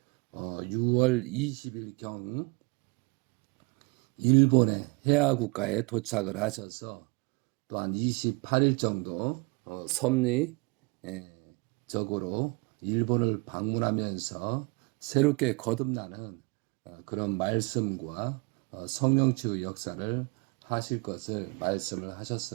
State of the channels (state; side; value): quieter; left; 30.3 dB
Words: 6월 20일경 일본의 해화 국가에 도착을 하셔서 또한 28일 정도 섭리적으로 일본을 방문하면서 새롭게 거듭나는 그런 말씀과 성령치유 역사를 하실 것을 말씀을